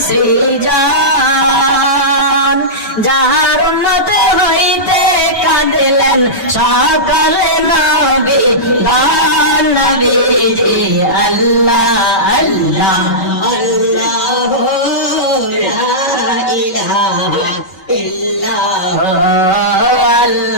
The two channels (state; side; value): late; right; 5.2 ms